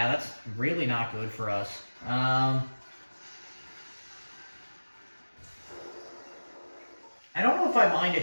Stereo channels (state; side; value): inverted; both; correlation -1.00